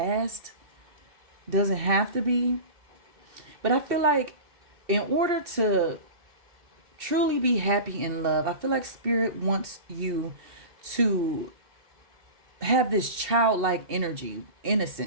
Doesn't have to be. But I feel like in order to truly be happy in love, I feel like Spirit wants you to have this childlike energy,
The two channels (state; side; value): late; left; 2.7 ms